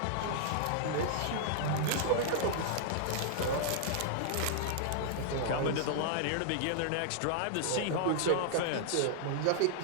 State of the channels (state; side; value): different; both; correlation -0.01